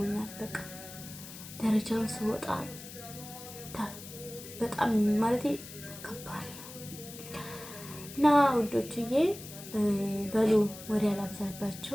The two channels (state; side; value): noise; left; hiss, 14 dB below the sound